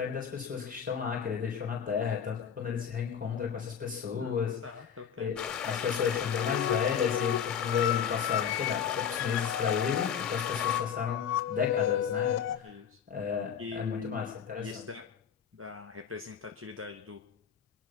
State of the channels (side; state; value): right; quieter; 7.8 dB